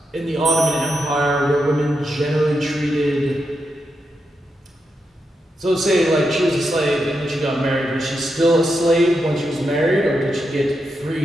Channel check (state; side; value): normal; both; correlation 0.85